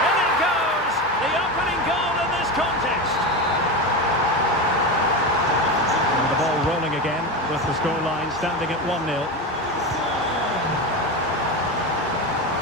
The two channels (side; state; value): both; normal; correlation 0.20